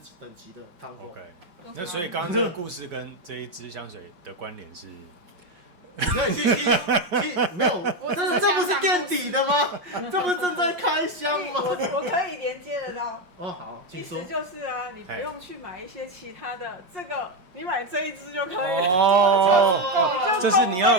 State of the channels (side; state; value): left; late; 5.6 ms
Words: 等级的Tom Ford。那所以刚刚这个故事跟这一支香水的关联是？你可以去没有，这不是垫底的吗？这不是正在开箱吗？我可以连接得到。好，请说。意思就是啊，你不用去买一些其他的，这个你买这一支就可以了，就供